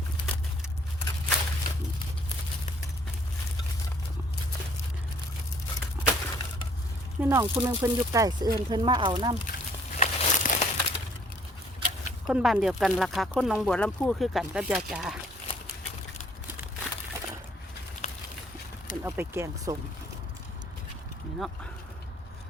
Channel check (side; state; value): both; normal; correlation 0.61